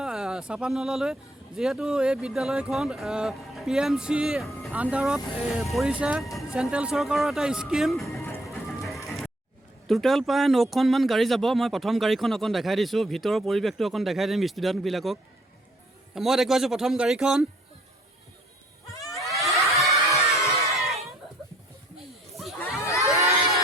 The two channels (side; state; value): both; normal; correlation 0.62